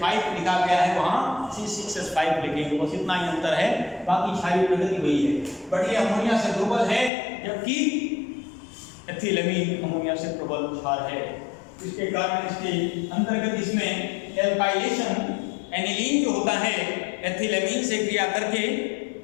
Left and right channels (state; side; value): drops out; right; at 7.1 s